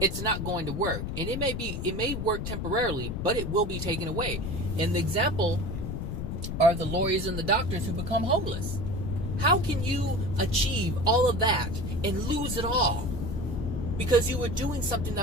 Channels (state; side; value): noise; left; rumble, 4 dB below the sound